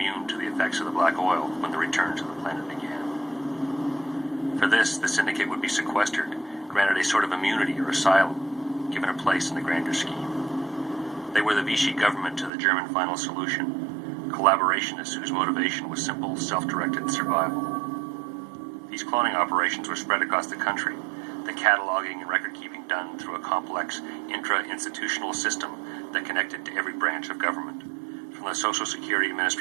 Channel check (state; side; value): drops out; left; at 12.5 s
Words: to the effects of the black oil when the return to the planet began. For this, the syndicate would be sequestered, granted a sort of immunity or asylum, given a place in the grander scheme. They were the Vichy government to the German final solution, collaborationists whose motivation was simple, self-directed survival. These cloning operations were spread across the country, the cataloging and record-keeping done through a complex intra-institutional system that connected to every branch of government, from the Social Security